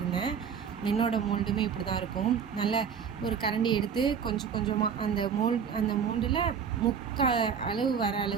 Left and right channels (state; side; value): quieter; left; 7.0 dB